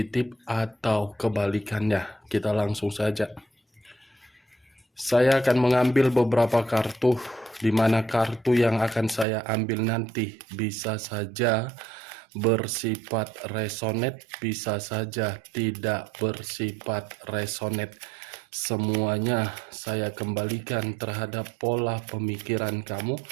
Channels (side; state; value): left; drops out; at 9.2 s